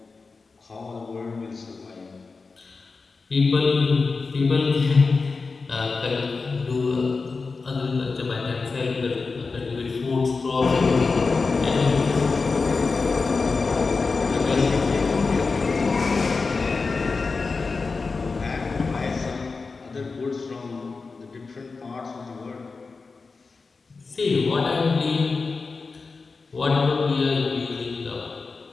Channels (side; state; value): right; quieter; 4.3 dB